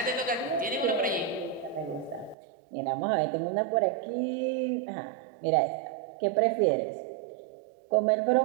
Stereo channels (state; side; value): drops out; left; at 2.4 s